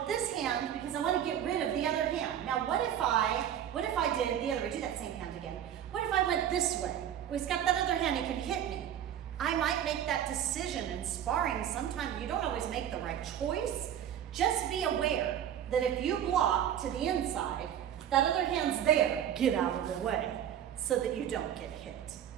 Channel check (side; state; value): left; quieter; 10.1 dB